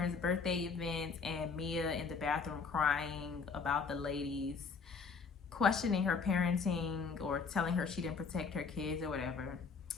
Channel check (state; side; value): quieter; right; 5.2 dB